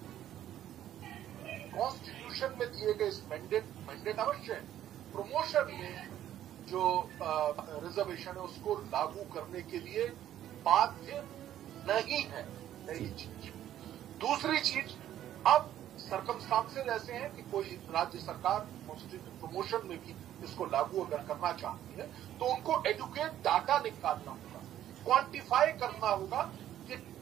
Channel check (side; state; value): left; quieter; 11.8 dB